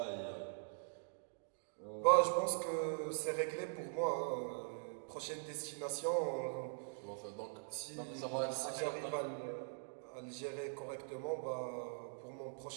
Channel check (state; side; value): silent; left; digital silence